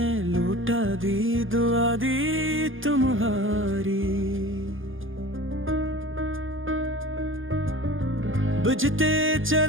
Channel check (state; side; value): late; left; 0.58 ms